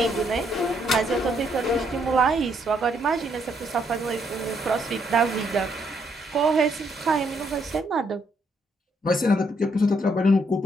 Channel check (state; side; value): normal; both; correlation 0.73